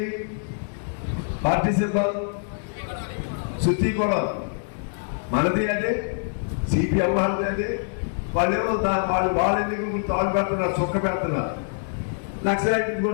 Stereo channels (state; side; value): silent; right; 62 dB below the other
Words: పార్టీ సింబల్ శుద్ధి కూడా మనది అదే, సిపిఎం వాళ్ళది అదే. వాళ్ళేమో వాళ్ళ ఎన్నికలు తాళ్ళు పెడుతున్నారు, చొక్క పెడుతున్నారు. నక్సలైట్